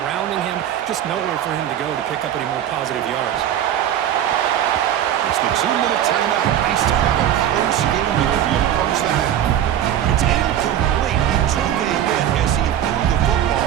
him. Just nowhere for him to go to pick up any more positive yards. It's the 2-minute timeout. Nice to have a close game here if you approach that. It's incomplete. He took a hit as he threw the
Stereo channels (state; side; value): quieter; left; 10.7 dB